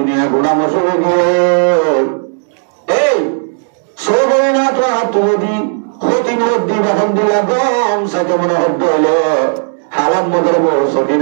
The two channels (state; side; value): silent; left; digital silence